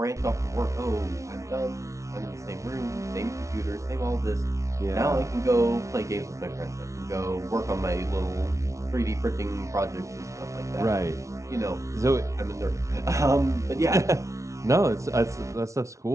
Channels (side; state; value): left; late; 0.14 ms